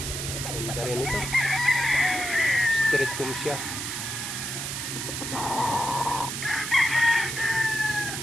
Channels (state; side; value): noise; right; hiss, 4 dB below the sound